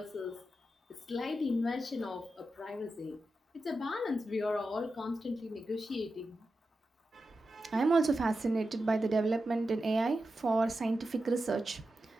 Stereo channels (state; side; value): normal; both; correlation 0.90